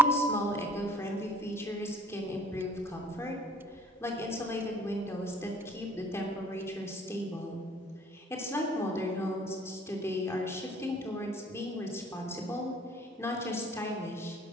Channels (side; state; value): both; normal; correlation 0.55